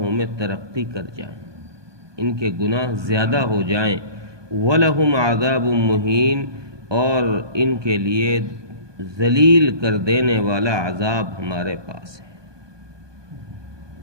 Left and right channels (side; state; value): left; late; 1.2 ms